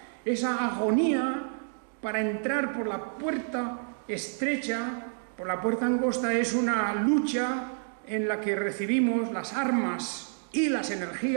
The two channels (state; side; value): silent; left; digital silence